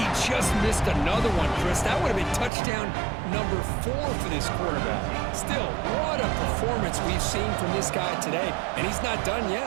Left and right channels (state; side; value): drops out; left; at 2.5 s